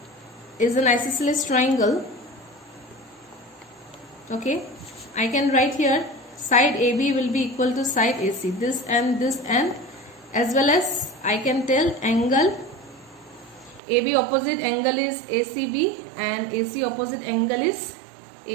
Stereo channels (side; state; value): left; drops out; at 13.8 s